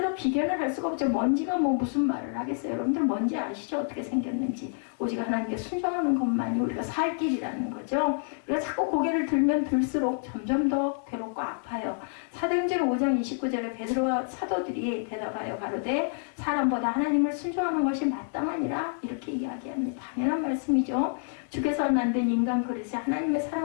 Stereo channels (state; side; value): silent; right; 59 dB below the other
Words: 비견을 할 수가 없죠. 먼지가 무슨 말을 하겠어요. 여러분들 먼지 아시죠? 어떻게 생겼는지. 오직 하나님께 순종하는 것만이 우리가 살 길이라는 거죠. 우리가 자꾸 고개를 들면 들수록 점점 더 괴롭고 아파요. 사도행전 5장 29절에 베드로와 사도들이 대답하여 가로되 사람보다 하나님을 순종하는 것이 마땅하니라. 이렇게 이야기합니다. 당연한 말씀이죠. 주께서 만든 인간 그릇에 하나님의